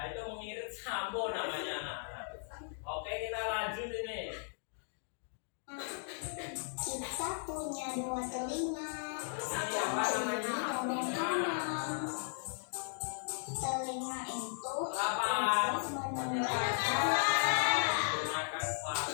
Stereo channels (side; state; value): right; silent; digital silence